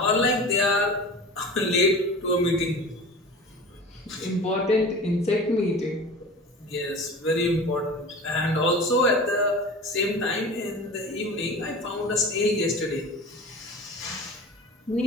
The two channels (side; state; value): both; normal; correlation 0.36